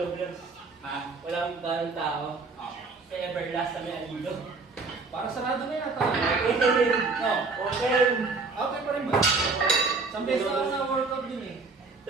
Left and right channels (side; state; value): left; quieter; 4.0 dB